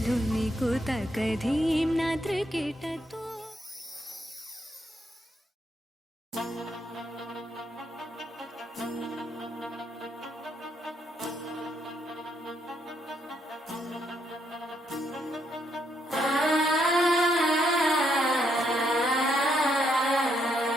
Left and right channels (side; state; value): both; normal; correlation 0.75